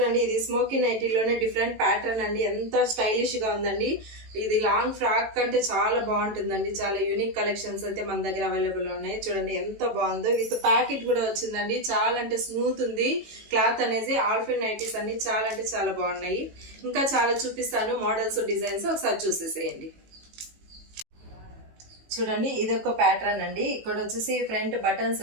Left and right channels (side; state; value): left; late; 18 ms